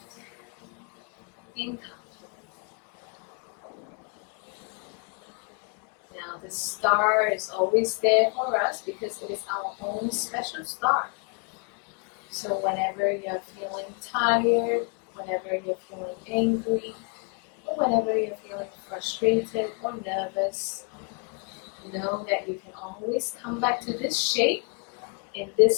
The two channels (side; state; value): right; quieter; 38.6 dB